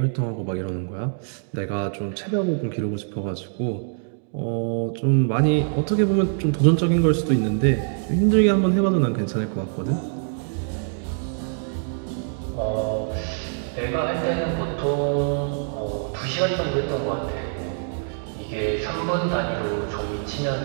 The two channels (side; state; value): left; silent; digital silence